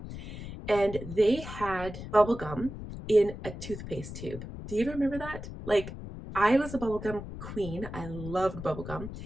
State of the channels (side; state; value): left; noise; rumble, 10 dB below the sound